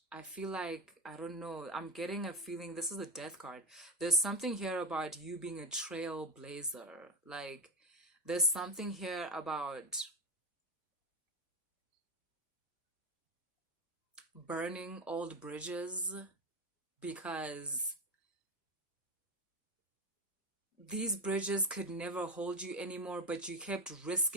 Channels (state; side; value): normal; both; correlation 0.17